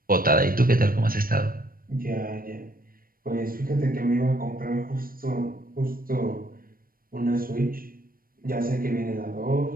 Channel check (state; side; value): late; left; 0.41 ms